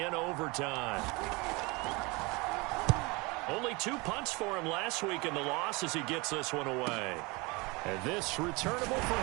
overtime. Only 2 punts for him last week in the loss as he gets this one away. And this returnable for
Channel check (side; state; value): left; quieter; 26.1 dB